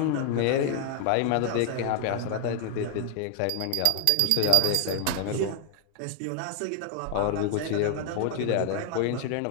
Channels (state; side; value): different; both; correlation 0.00